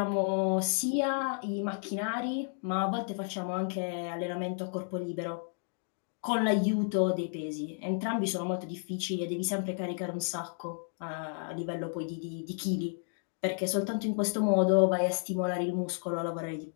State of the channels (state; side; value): silent; right; 56 dB below the other